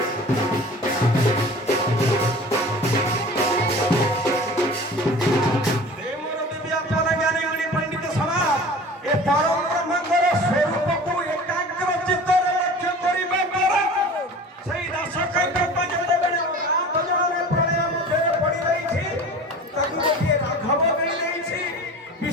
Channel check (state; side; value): normal; both; correlation 0.40